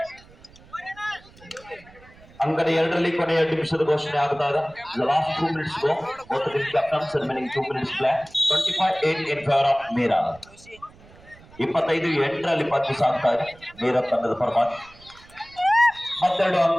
ಅಂಗಡಿ 2ರಲ್ಲಿ ಕೊನೆಯ ನಿಮಿಷದ ಘೋಷಣೆ ಆಗ್ತಾ ಇದೆ. Last 2 minutes go both the captains remaining 2 minutes play 25-8 in favor of Meera. 25-8ರಲ್ಲಿ ಪಂದ್ಯ ಸಾಗ್ತಾ ಇದೆ ಮೀರಾ ತಂಡದ ಪರವಾಗಿ. ಮತ್ತೆರಡು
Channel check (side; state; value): right; noise; rumble, 24 dB below the sound